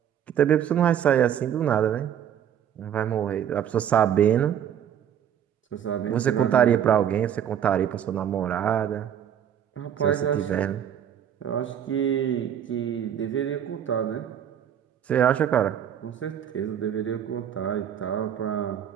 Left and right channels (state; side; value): quieter; left; 9.4 dB